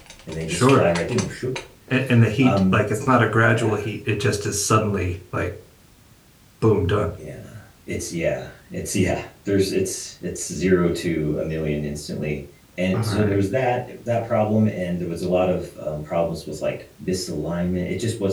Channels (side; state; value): both; identical; correlation 1.00